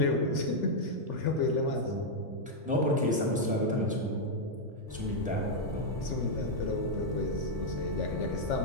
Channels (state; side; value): normal; both; correlation -0.02